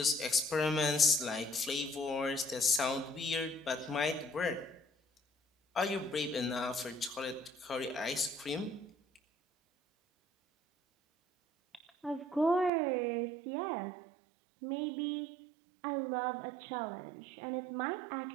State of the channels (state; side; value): drops out; left; at 12.7 s